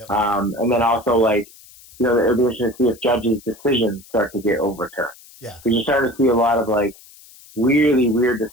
And then also, like, you know, it'll be interesting to see if judges' decisions start to get overturned. Yeah. Because you're starting to see a lot of, like, really weird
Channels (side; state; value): left; noise; hiss, 23 dB below the sound